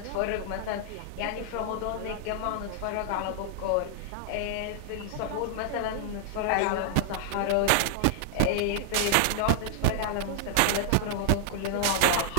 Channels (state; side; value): different; both; correlation 0.00